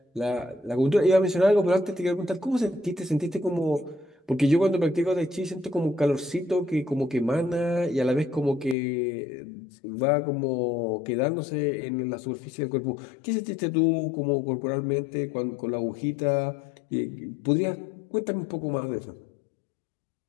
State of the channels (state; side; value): drops out; right; at 8.8 s